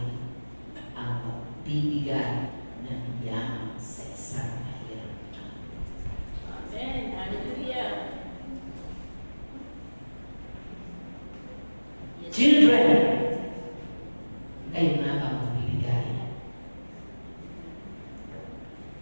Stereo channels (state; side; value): inverted; both; correlation -1.00